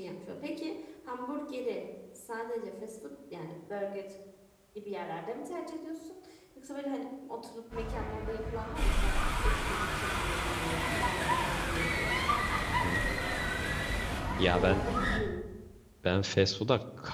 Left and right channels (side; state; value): both; identical; correlation 1.00